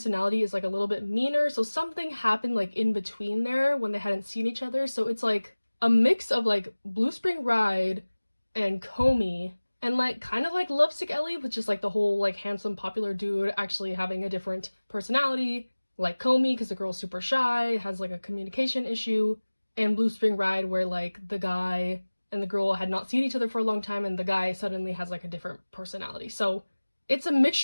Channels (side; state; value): both; inverted; correlation -1.00